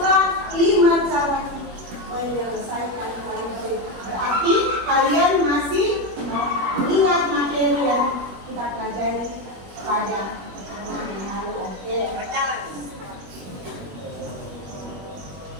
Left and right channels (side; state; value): left; late; 21 ms